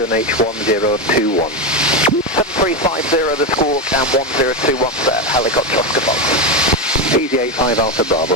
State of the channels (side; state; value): both; normal; correlation 0.12